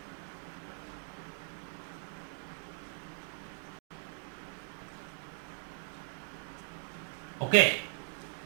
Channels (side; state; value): left; silent; 52 dB below the other